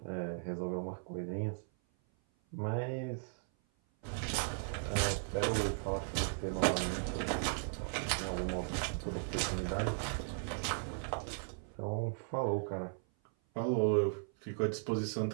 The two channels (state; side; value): silent; left; 53 dB below the other